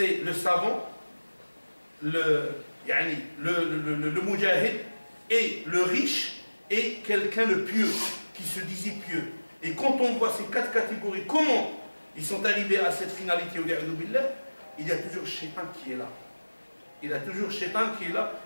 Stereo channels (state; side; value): inverted; both; correlation -1.00